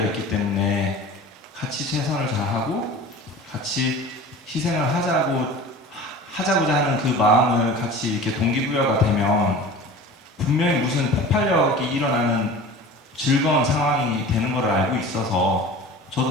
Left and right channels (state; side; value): normal; both; correlation 0.38